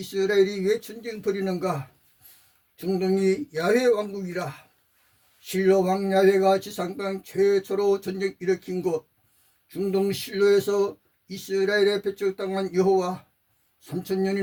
왜 전쟁 벌이는가? 중동이 야훼 왕국이라. 실로 왕 야훼가 지상 땅 최초로 전쟁 일으킨 곳, 중동 실로에서 이스라엘에 배척당한 여호와,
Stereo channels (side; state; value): both; identical; correlation 1.00